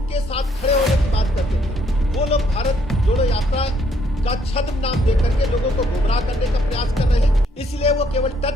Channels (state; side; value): normal; both; correlation 0.69